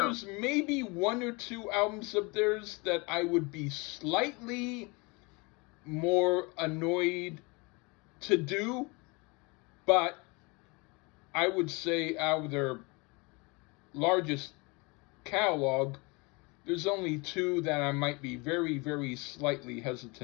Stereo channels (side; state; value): right; quieter; 27.9 dB